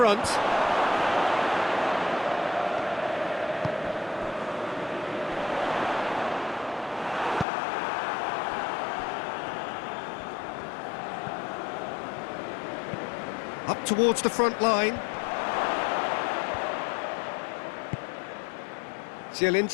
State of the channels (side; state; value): right; drops out; at 7.5 s